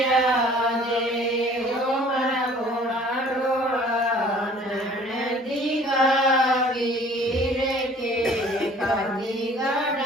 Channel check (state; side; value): normal; both; correlation 0.52